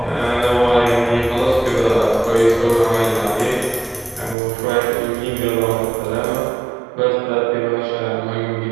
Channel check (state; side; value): drops out; left; at 4.4 s